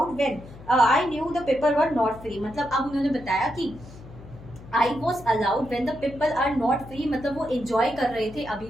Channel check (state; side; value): noise; left; hum, 18 dB below the sound